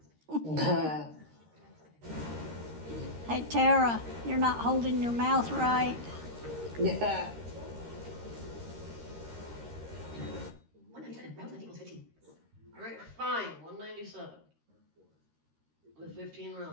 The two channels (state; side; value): late; left; 13 ms